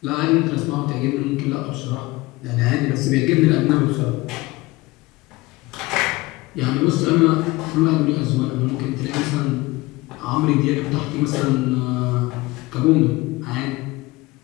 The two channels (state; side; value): quieter; right; 21.2 dB